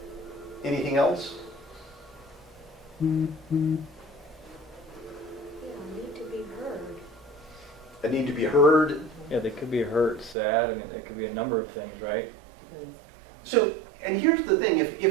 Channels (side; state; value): left; drops out; at 10.4 s